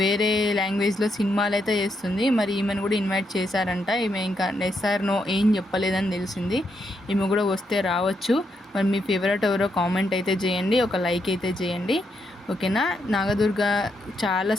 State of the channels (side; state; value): both; normal; correlation 0.79